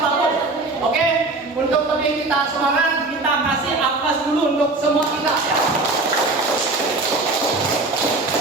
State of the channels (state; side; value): quieter; left; 3.3 dB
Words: Oke, untuk lebih kita semangat, kita kasih aplaus dulu untuk semua kita ya.